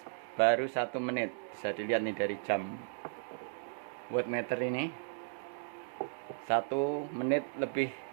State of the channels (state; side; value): silent; left; digital silence